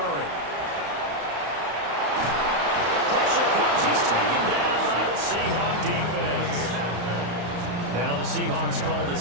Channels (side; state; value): left; late; 34 ms